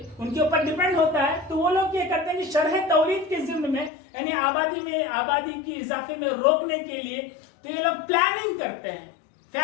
کے اوپر ڈیپینڈ ہوتا ہے. تو وہ لوگ یہ کرتے ہیں کہ شرح تولید کے ضمن میں یعنی آبادی کی اضافے میں روکنے کے لیے تو یہ لوگ پلاننگ کرتے ہیں.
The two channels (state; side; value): drops out; right; at 3.9 s